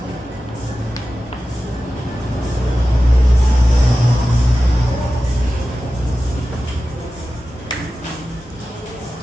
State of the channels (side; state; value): both; normal; correlation 0.94